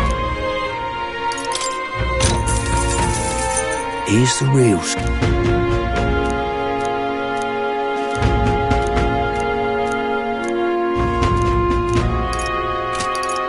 Here's the real skinny.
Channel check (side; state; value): both; identical; correlation 1.00